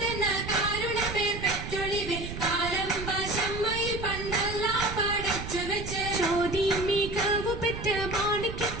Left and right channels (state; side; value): noise; right; rumble, 8 dB below the sound